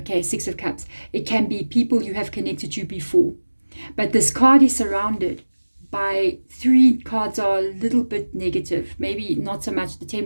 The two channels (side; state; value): both; inverted; correlation -1.00